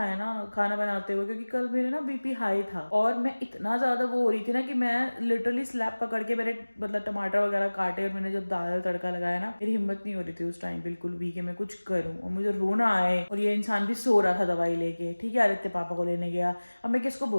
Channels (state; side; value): inverted; both; correlation -1.00